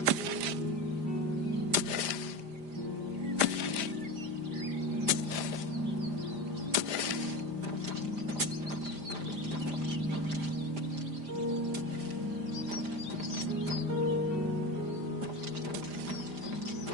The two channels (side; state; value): left; late; 5.0 ms